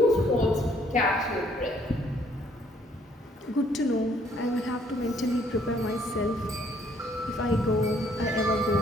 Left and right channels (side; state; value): both; normal; correlation 0.65